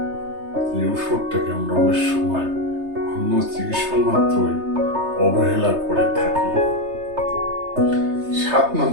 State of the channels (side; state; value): left; late; 3.3 ms